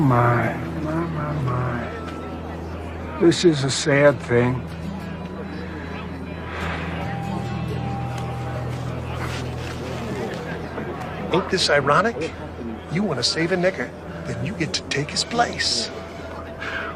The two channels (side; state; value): both; identical; correlation 1.00